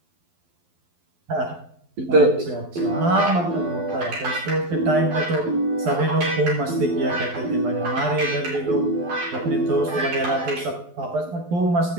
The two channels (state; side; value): late; left; 12 ms